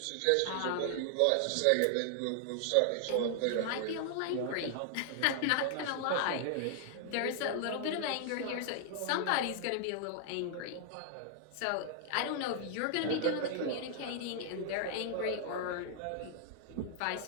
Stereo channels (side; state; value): both; different; correlation -0.01